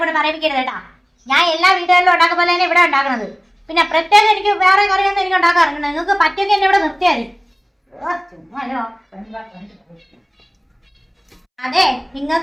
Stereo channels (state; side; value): identical; both; correlation 1.00